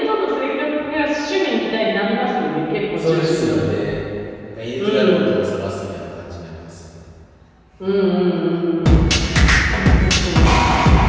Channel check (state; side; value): identical; both; correlation 1.00